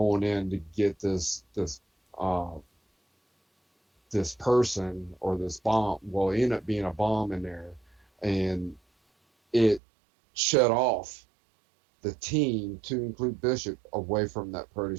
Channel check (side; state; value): left; drops out; at 9.8 s